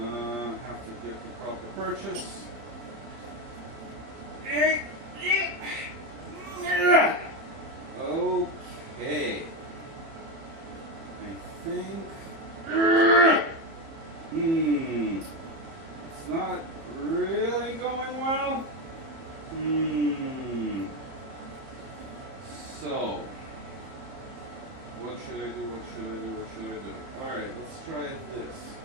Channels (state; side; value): late; left; 31 ms